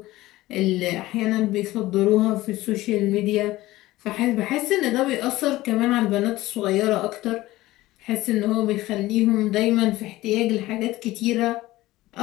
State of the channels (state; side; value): quieter; right; 17.4 dB